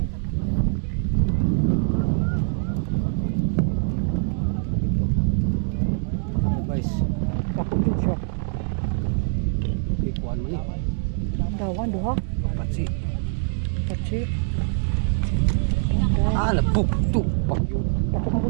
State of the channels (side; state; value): left; silent; digital silence